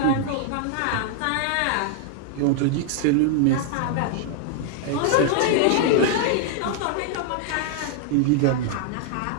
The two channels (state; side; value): different; both; correlation 0.00